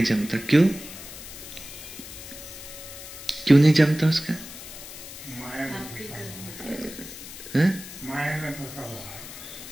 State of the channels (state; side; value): noise; left; hiss, 13 dB below the sound